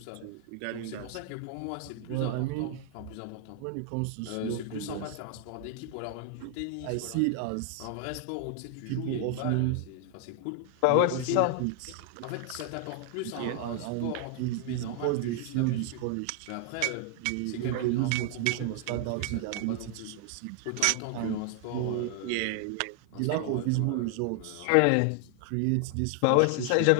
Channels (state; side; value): different; both; correlation 0.00